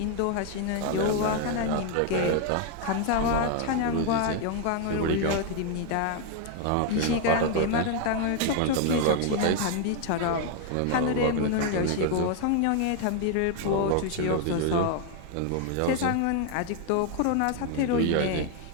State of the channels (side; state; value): both; different; correlation 0.01